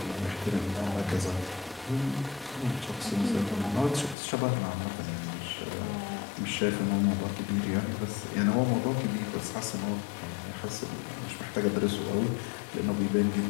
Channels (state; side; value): drops out; right; at 4.2 s